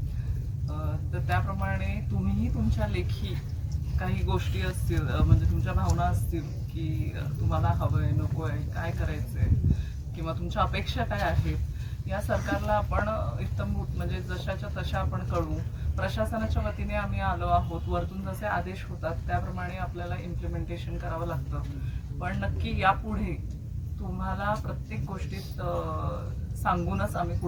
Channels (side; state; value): both; identical; correlation 1.00